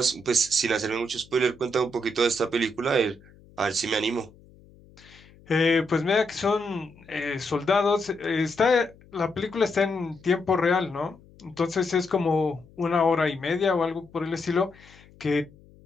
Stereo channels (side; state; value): left; noise; hum, 25 dB below the sound